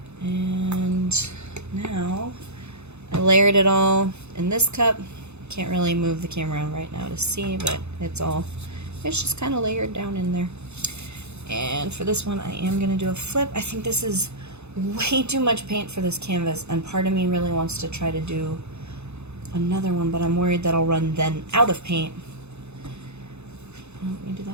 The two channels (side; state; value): left; late; 0.81 ms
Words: And now I layered it all in this cup. Can't really move the camera right now to see, but it's just kind of layered down in there. And for this one, I am going to do a flip. I think this is way too much paint for this canvas, and part of me really wants to try to do another one, but I'm worried that I'll run then out of paint. Let me do